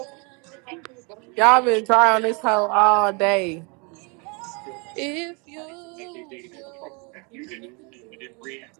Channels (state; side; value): quieter; left; 32.1 dB